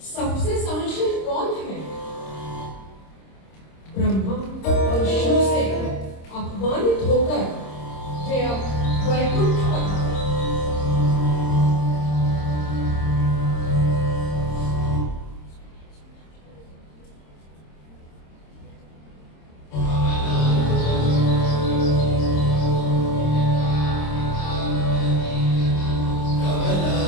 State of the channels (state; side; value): late; right; 26 ms